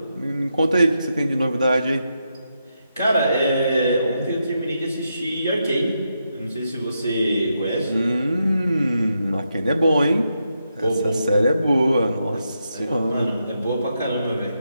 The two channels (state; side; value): inverted; both; correlation -0.83